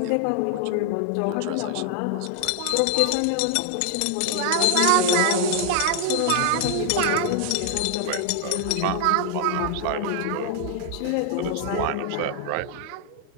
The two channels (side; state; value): both; different; correlation 0.00